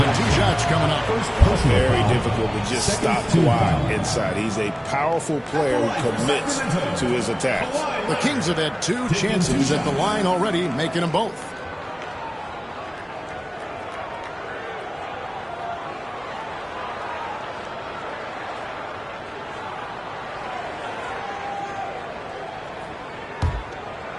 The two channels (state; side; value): identical; both; correlation 1.00